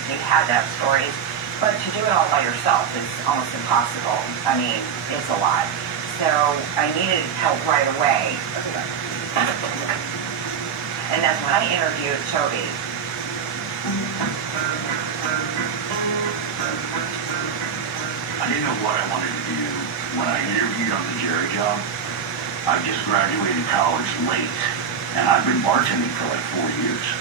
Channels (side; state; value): left; quieter; 7.1 dB